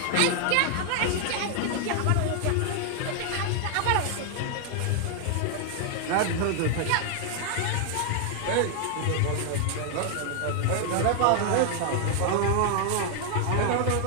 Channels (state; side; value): different; both; correlation 0.00